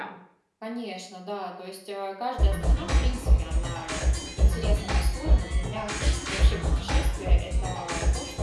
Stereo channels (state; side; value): identical; both; correlation 1.00